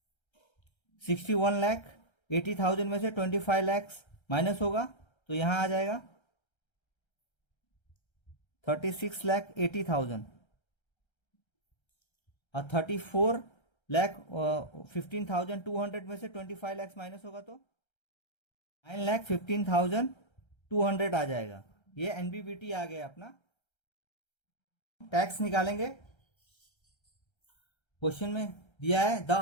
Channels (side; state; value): right; late; 1.3 ms